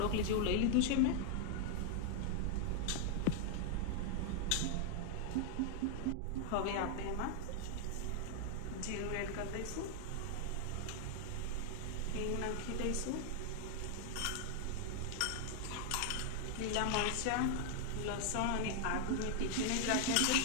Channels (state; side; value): different; both; correlation 0.00